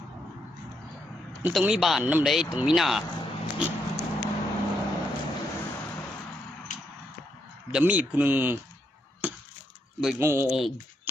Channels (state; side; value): normal; both; correlation 0.78